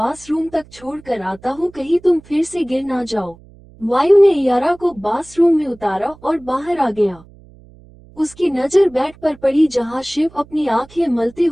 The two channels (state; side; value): noise; right; hum, 24 dB below the sound